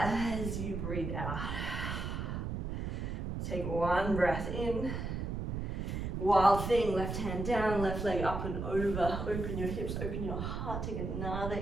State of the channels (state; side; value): noise; right; rumble, 3 dB below the sound